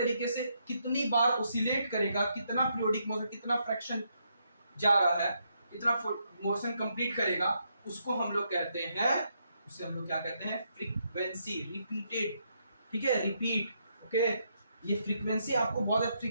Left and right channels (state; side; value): inverted; both; correlation -0.77